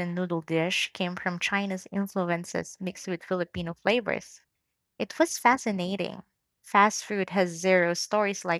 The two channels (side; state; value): both; identical; correlation 1.00